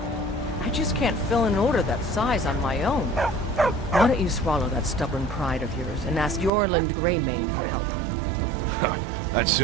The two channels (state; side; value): drops out; left; at 6.5 s